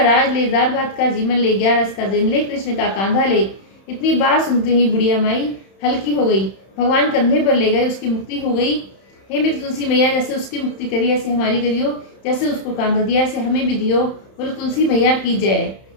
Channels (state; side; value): late; right; 31 ms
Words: ले, दाल भात का जीवन ले, 11 का दिन ले, कृष्ण का कांधा ले, इतनी बात सुनते ही बुढ़िया माई हल्की हो गई। भगवान कंधे पर ले गए, उसकी मुक्ति हो गई। हे मेरी तुलसी मैया, जैसे उसकी मुक्ति करी ऐसे हमारी करियो, जैसे उसको कांधा दिया ऐसे हमें भी दियो। बोलो तुलसी मैया की जय,